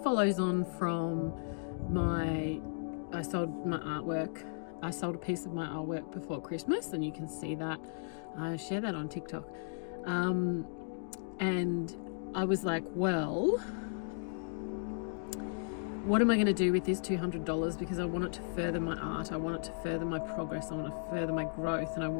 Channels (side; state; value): right; silent; digital silence